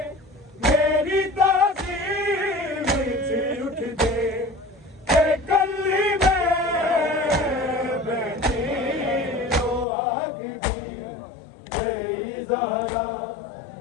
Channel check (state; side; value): drops out; right; at 9.9 s